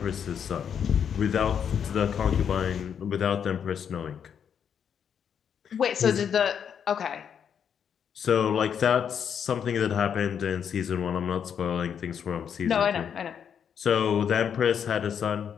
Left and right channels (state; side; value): quieter; right; 7.9 dB